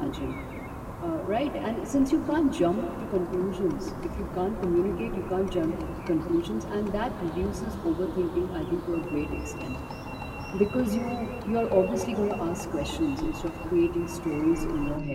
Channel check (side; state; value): both; identical; correlation 1.00